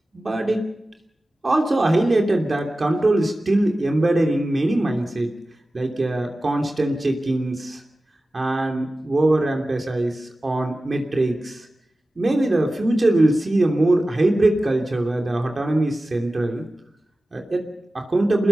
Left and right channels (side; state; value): both; normal; correlation 0.95